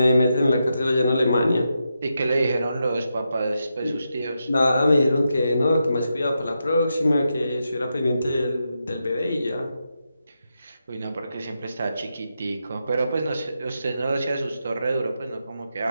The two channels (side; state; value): both; inverted; correlation -0.86